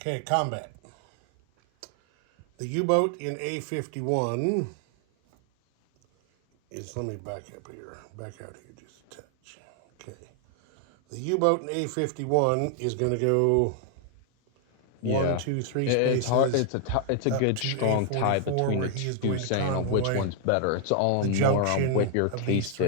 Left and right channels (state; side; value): different; both; correlation 0.00